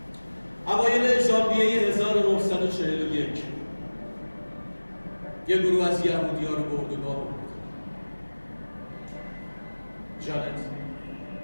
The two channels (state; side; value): inverted; both; correlation -1.00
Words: اوایل ژانویه 1941 یه گروه از یهودی‌ها رو به اردوگاه برد. جانت